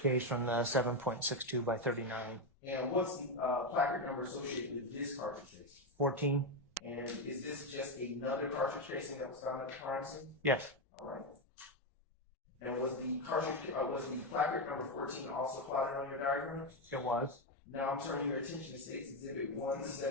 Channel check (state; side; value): normal; both; correlation 0.07